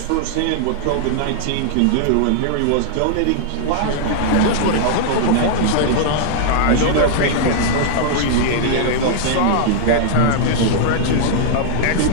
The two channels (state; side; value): different; both; correlation -0.01